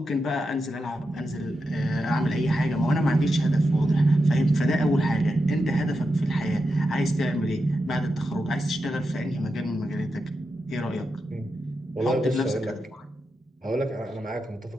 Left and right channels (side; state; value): both; normal; correlation 0.88